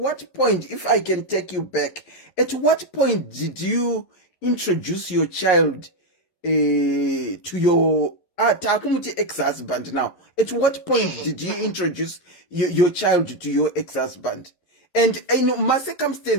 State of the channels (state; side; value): late; right; 11 ms